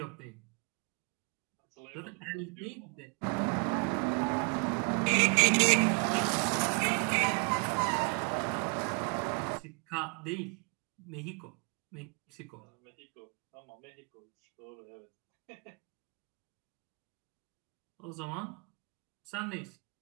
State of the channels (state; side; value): quieter; left; 36.0 dB